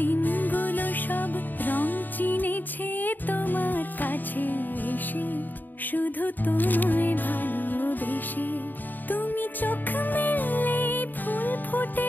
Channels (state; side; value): late; right; 0.089 ms